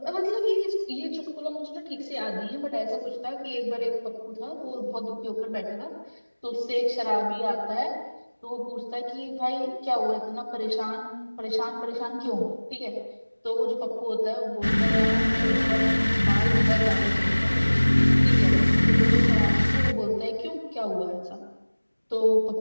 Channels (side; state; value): both; inverted; correlation -1.00